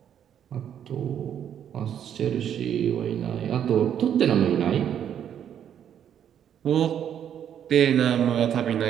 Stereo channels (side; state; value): left; quieter; 9.3 dB